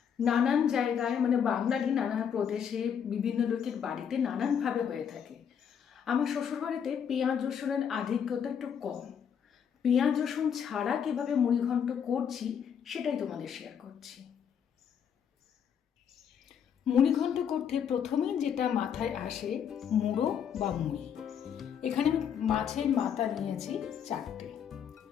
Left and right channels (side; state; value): right; quieter; 7.9 dB